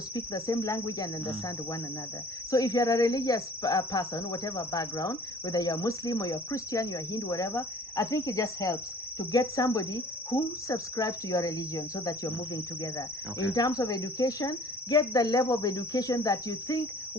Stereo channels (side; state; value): both; normal; correlation 0.50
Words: speak the same language and understand one another. So if you're a religious person, whatever background, whether you're Muslim or you're Christian, you're Hindu, whatever, I think it just helps to get somebody who subscribes to your religion so that you're moving together. Okay. In terms of education, get the level of education that you think